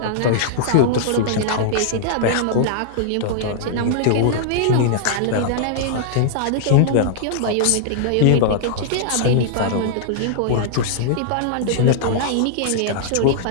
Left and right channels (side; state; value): both; different; correlation -0.01